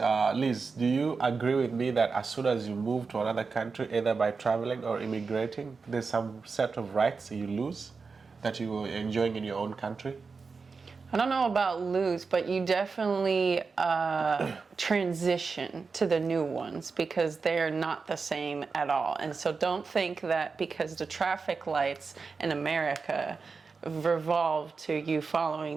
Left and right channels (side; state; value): left; quieter; 4.7 dB